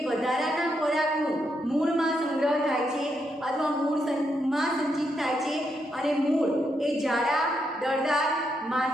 વધારાના ખોરાકનું મૂળમાં સંગ્રહ થાય છે અથવા મૂળમાં સંચિત થાય છે અને મૂળ એ જાડા, દળદાર,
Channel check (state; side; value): normal; both; correlation 0.80